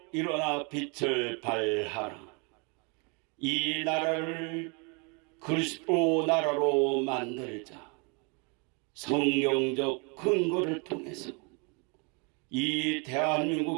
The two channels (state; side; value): quieter; left; 33.2 dB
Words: 일어나 빛을 발하라. 이 나라를 그리스도 나라로 만들자. 성경적 근거를 통해서 이